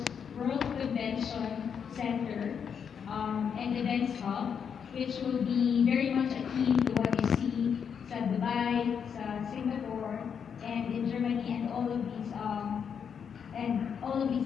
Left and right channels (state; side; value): quieter; right; 7.2 dB